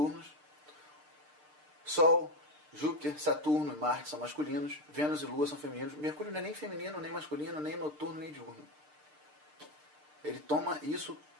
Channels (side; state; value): left; late; 6.7 ms